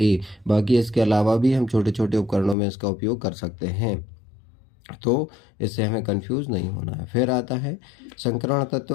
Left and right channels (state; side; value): drops out; right; at 2.6 s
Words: ए। बाकी इसके अलावा भी हम छोटे छोटे उपकरणों में इसका उपयोग कर सकते हैं, तो इससे हमें कंफ्यूज नहीं होना है। फिर आता है संकरण तत्व